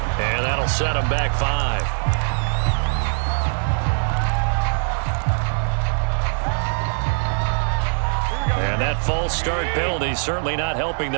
And that'll set him back 5. And that false start penalty certainly not helping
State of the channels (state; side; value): silent; left; 55 dB below the other